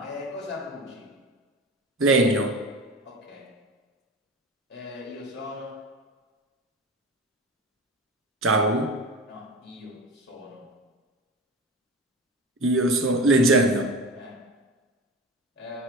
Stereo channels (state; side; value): normal; both; correlation 0.30